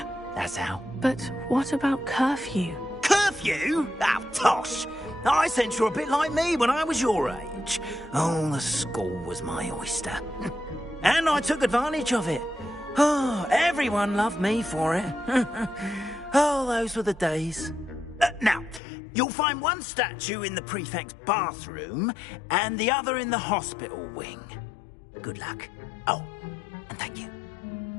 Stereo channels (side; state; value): right; drops out; at 18.8 s